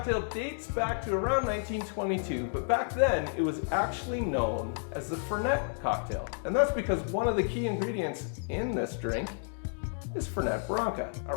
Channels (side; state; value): right; silent; digital silence